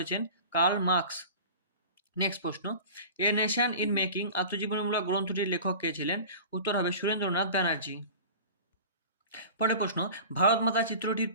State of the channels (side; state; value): both; inverted; correlation -0.38